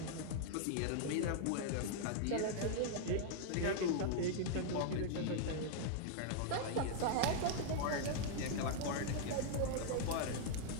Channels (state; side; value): different; both; correlation 0.00